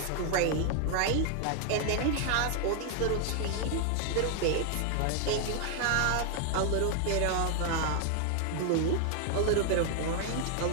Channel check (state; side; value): different; both; correlation 0.00